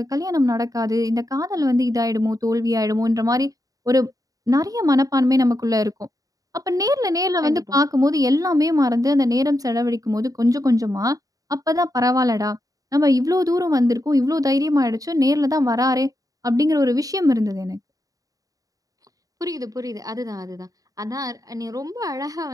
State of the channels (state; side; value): late; left; 0.17 ms